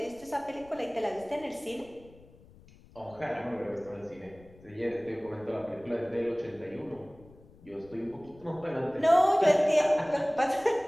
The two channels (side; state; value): left; noise; rumble, 24 dB below the sound